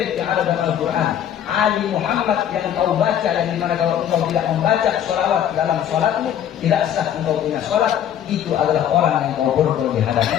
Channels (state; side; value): quieter; right; 10.0 dB